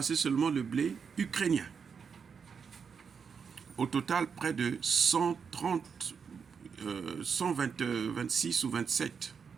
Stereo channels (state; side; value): quieter; left; 6.2 dB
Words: seulement le blé ukrainien. Au total, près de 26 ou 27